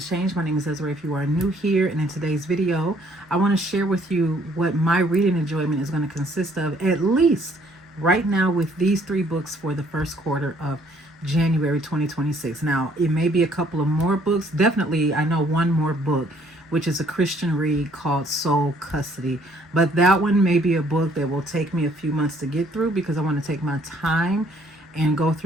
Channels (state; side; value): normal; both; correlation 0.63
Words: Change. My name is Ezra if you are new here, and in today's video I want to share with you what my reading enjoyment is going to consist of, at least right now, with these three books for the first quarter of January 2026. Now, it may be a couple of more books. Definitely I know one more book, which is a Christian read called Soul Custody, but that one may be a book that will take me a few months to get through because I want to take my time and go